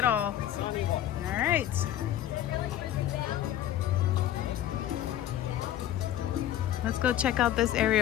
all. All right. Let's go check out this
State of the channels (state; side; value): quieter; right; 12.0 dB